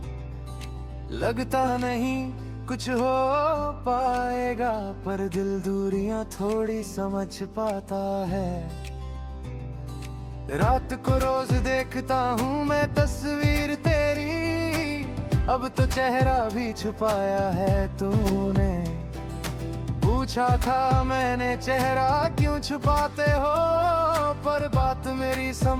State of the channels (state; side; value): identical; both; correlation 1.00